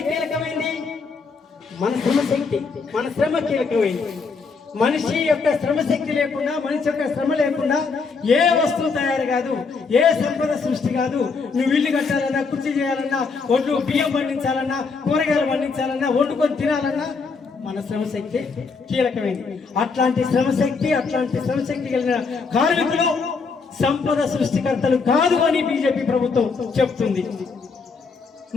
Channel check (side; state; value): right; quieter; 4.8 dB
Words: కీలకమైంది? మన శ్రమశక్తి, మన శ్రమ కీలకమైంది. మనిషి యొక్క శ్రమశక్తి లేకుండా, మనిషి యొక్క శ్రమ లేకుండా ఏ వస్తువు తయారు కాదు, ఏ సంపద సృష్టి కాదు. నువ్వు ఇల్లు కట్టాలన్నా, కుర్చీ చేయాలన్నా, ఒడ్లు బియ్యం పండించాలన్నా, కూరగాయలు పండించాలన్నా, వండుకొని తినాలన్నా మన శ్రమశక్తి కీలకమైంది. అట్లాంటి శ్రమశక్తి కలిగిన కార్మికులు సంపద సృష్టికర్తలు కాదు అని బీజేపీ ప్రభుత్వం చెప్తుంది.